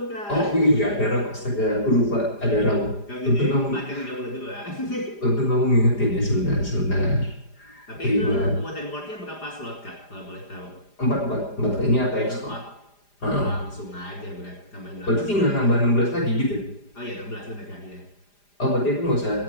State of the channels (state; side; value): late; right; 4.9 ms